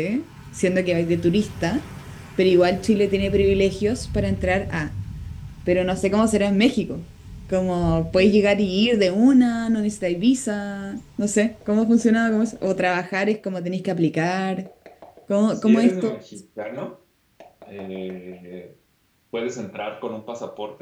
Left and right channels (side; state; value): both; identical; correlation 1.00